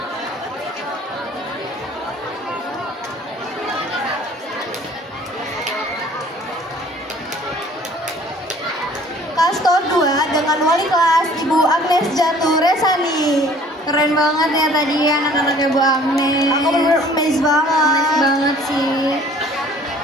dengan wali kelas Ibu Agnes Jatuh Resani. Keren banget ya tadi anak-anaknya Bu Agnes. Aku bener-bener amazed banget. Amazed banget sih.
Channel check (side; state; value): both; normal; correlation 0.53